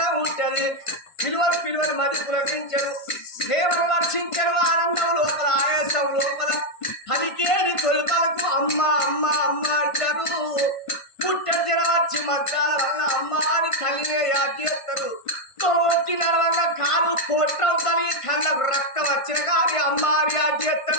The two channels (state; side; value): late; right; 1.5 ms